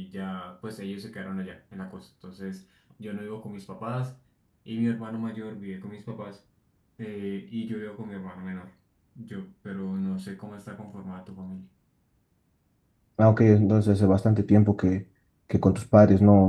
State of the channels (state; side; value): identical; both; correlation 1.00